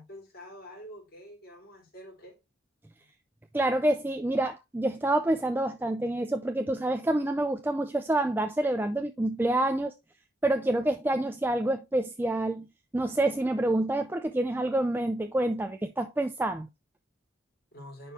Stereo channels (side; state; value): both; normal; correlation 0.82